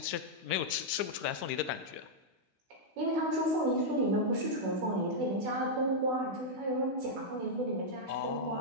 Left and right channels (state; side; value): late; left; 15 ms